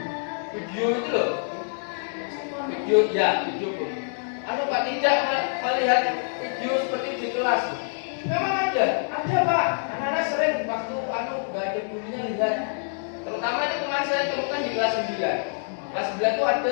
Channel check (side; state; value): right; silent; digital silence